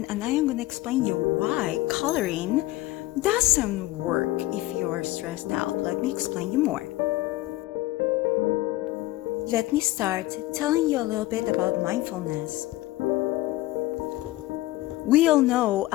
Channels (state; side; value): quieter; right; 17.6 dB